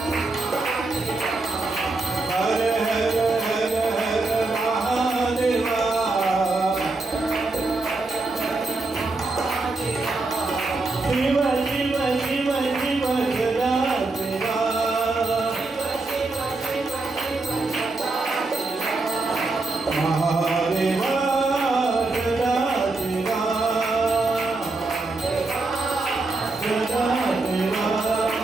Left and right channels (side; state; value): left; quieter; 3.3 dB